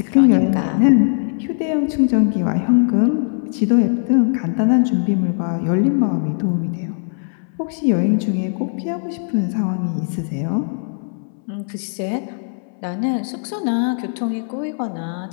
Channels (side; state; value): right; silent; 66 dB below the other